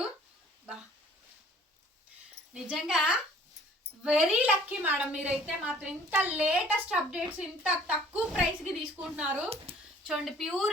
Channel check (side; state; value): both; normal; correlation 0.53